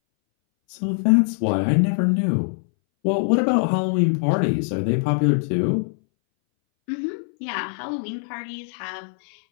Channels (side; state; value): right; silent; 62 dB below the other